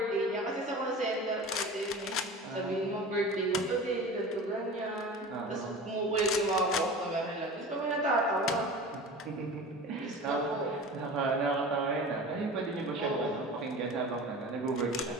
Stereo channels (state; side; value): normal; both; correlation 0.35